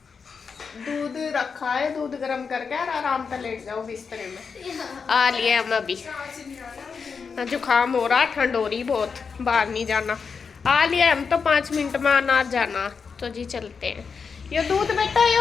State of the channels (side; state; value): right; quieter; 5.6 dB